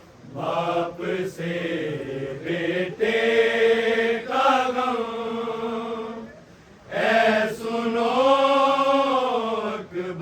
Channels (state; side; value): identical; both; correlation 1.00